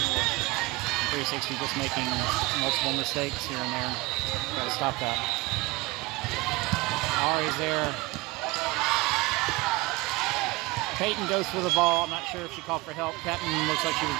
360 just making multiple mistakes here and there. Gotta stop that. Ari's there. Peyton goes for the ball. I'm not sure if she called for help. Captain looks like she was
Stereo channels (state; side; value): quieter; left; 22.3 dB